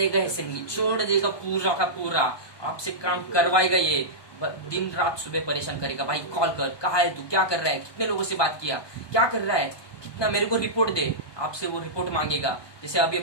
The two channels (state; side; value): late; right; 1.2 ms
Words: ऐसे निचोड़ देगा पूरा का पूरा, आपसे काम करवाएगा। ये दिन रात सुबह परेशान करेगा, भाई कॉल कर, कहाँ है तू, क्या कर रहा है, कितने लोगों से बात किया, क्या कर रहा है, कितना, मेरे को रिपोर्ट दे। आपसे वो रिपोर्ट मांगेगा। जैसे अभी